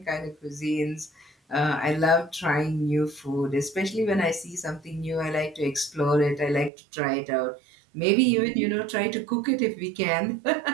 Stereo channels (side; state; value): left; drops out; at 6.7 s